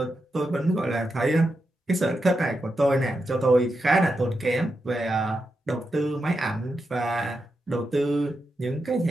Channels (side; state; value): both; normal; correlation 0.87